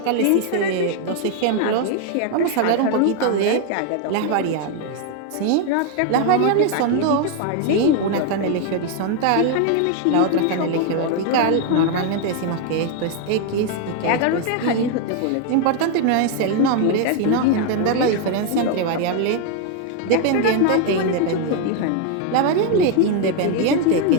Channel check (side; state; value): both; different; correlation 0.01